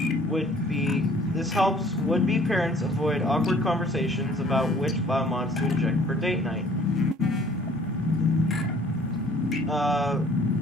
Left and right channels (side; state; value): both; normal; correlation 0.55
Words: would-be parents avoid awkward conversations about which biomods to inject for date night.